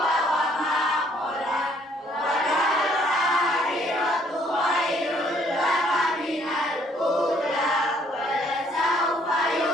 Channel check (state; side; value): normal; both; correlation 0.64